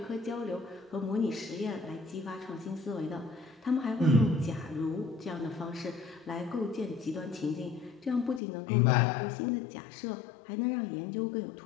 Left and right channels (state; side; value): drops out; right; at 8.4 s